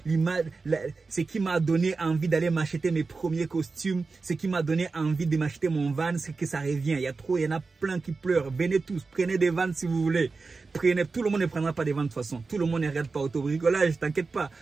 l'image, ce qui m'a donné envie d'aller m'acheter mes premiers costumes. Ce qui m'a donné envie de m'acheter mon van, c'est que ça revient. Il y en a plein qui pleurent. Venez tous, prenez des vannes si vous voulez. Prenez, tout le monde ne prendra pas des vannes de toute façon. Tout le monde ne regarde pas autobricolage, t'inquiète pas.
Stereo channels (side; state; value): left; quieter; 4.1 dB